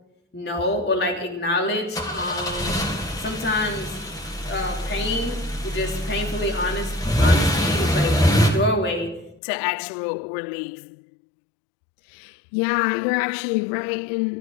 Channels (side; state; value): right; drops out; at 9.4 s